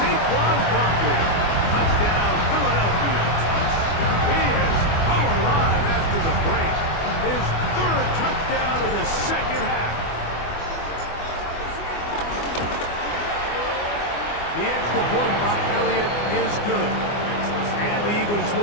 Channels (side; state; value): right; late; 24 ms